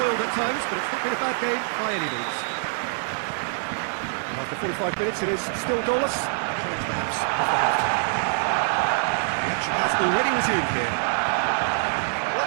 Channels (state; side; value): silent; left; digital silence